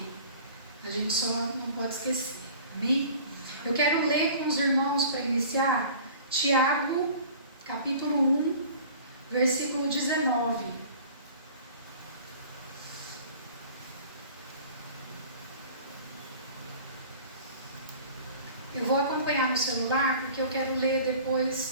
a gente só não pode esquecer. Amém? Eu quero ler com os irmãos para iniciar Tiago, capítulo 1, versículo 19. Eu vou acompanhar no celular porque eu quero ler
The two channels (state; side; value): inverted; both; correlation -0.45